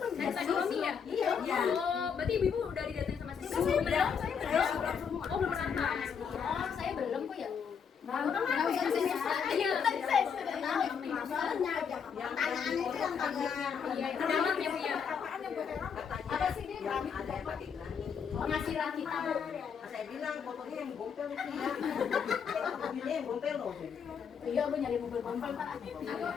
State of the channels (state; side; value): quieter; right; 6.8 dB